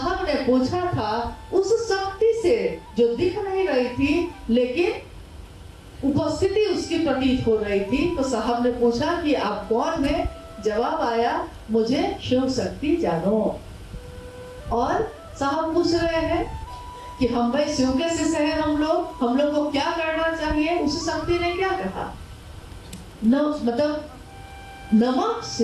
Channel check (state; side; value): identical; both; correlation 1.00